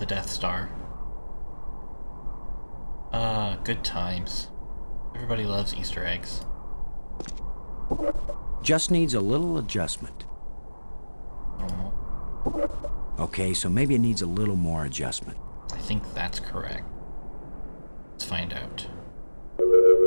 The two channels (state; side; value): inverted; both; correlation -1.00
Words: Death Star. Good times. Everybody loves Easter eggs. Just needs a little adjustment. Okay, so maybe it needs a little more adjustment. I think that's correct. Let's find out.